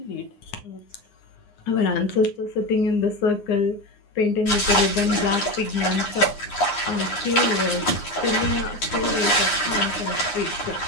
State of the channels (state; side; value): late; right; 9.7 ms